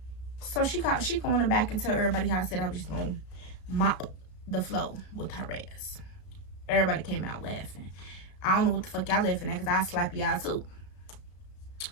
So she going back and tell everybody how I said I was just gonna mop the floor with her ass. Everybody came out laughing. I don't know what the fuck y'all laughing at, because I slap y'all too.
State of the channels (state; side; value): late; right; 34 ms